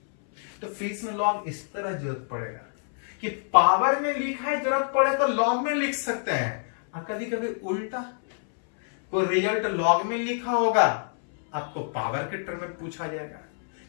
तो फिर में लॉग इस तरह जरूरत पड़ेगा कि पावर में लिखा है, जरूरत पड़े तो लॉग में लिख सकते हैं। कभी कभी उल्टा कोई रिजल्ट लॉग में लिखा होगा, आपको पावर के टर्म में पूछा जाएगा।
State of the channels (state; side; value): silent; right; 61 dB below the other